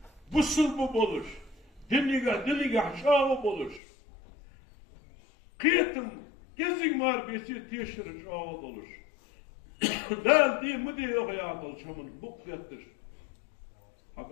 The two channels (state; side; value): drops out; right; at 3.8 s